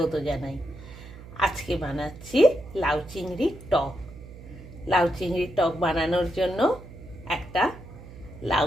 জানাই। আজকে বানাচ্ছি লাউ চিংড়ির টক। লাউ চিংড়ির টক বানানোর জন্য একটা লাউ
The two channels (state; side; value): noise; right; hum, 16 dB below the sound